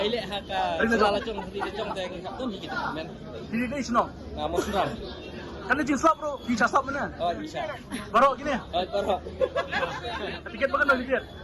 haka sala jong di jong dai ngap tu ni kita men. Di ni senang. Mau senang. Kan ni jinsap bro, bisa sap mana? Oh bisa. Baru gini. Baru. Tiket bagan no tiket.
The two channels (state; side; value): identical; both; correlation 1.00